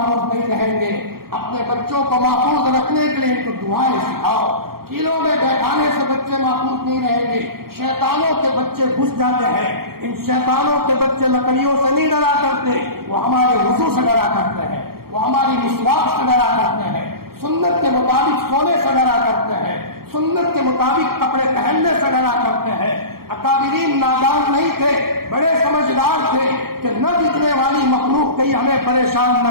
نہیں رہیں گے. اپنے بچوں کو محفوظ رکھنے کے لیے ان کو دعائیں سکھاؤ. کیلوں میں بیٹھانے سے بچے محفوظ نہیں رہیں گے. شیطانوں کے بچے گھس جاتے ہیں. ان شیطانوں کے بچے لکڑیوں سے نہیں ڈرا کرتے، وہ ہمارے وضو سے ڈرا کرتے ہیں، وہ ہماری مسواک سے ڈرا کرتے ہیں، سنت کے مطابق سونے سے ڈرا کرتے ہیں، سنت کے مطابق کپڑے پہننے سے ڈرا کرتے ہیں. اکابرین نادان نہیں تھے، بڑے سمجھدار تھے کہ نہ دکھنے والی مخلوق کہیں ہمیں پریشان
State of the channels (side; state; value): left; late; 0.94 ms